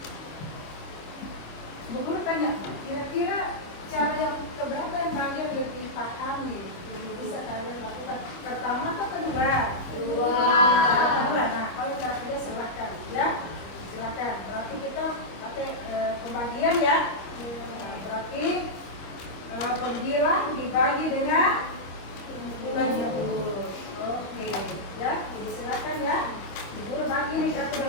Bu Guru tanya, kira-kira cara yang keberapa yang kalian lebih pahami, bisa kalian lakukan? Pertama atau kedua? Kedua. Nah, kalau cara kedua silakan, ya, silakan. Berarti kita pakai pembagian ya. Berarti pembilang dibagi dengan 20. Oke, ya. Jadi silakan ya. Ibu bagi nih kartu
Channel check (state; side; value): late; right; 25 ms